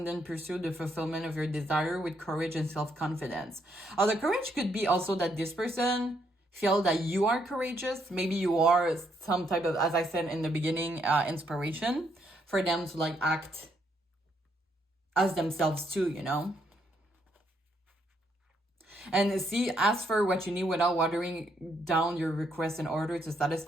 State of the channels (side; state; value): both; normal; correlation 0.74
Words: then pursue the fulfillment of your desire with courage and self-confidence. The courage could be also that this person feel that you are courageous. Maybe you are some type of, as I said in the beginning, inspiration for them to like act as themselves too, you know? And see, ask for what you need without watering down your request in order to